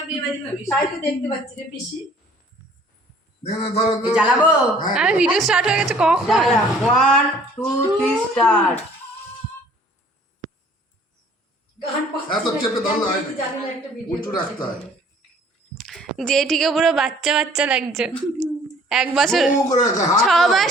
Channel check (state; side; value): normal; both; correlation 0.55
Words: বিয়ে বাড়ি ভাবি তাই তো দেখতে পাচ্ছি রে পিসি জ্বালাবো আরে ভিডিও স্টার্ট হয়ে গেছে কখন 1 2 3 স্টার্ট এত চেপে ধরলে হয় না, উঁচু রাখতে হয়। জেঠিকে পুরো বাচ্চা বাচ্চা লাগছে 1 বছর ও করে রাখা, হাত 6